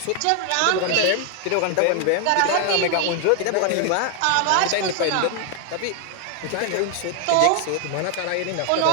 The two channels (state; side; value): different; both; correlation 0.00